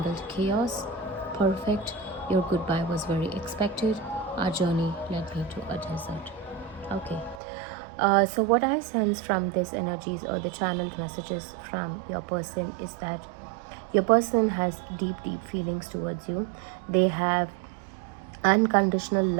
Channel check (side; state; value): left; drops out; at 7.4 s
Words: chaos. Perfect. Your goodbye was very expected. Our journey led me to a desert. Okay. So what I sense from these energies or the channeled messages from your person is that your person has deep feelings towards you. They have unconditional